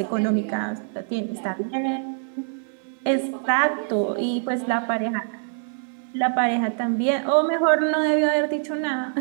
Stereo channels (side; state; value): left; silent; 60 dB below the other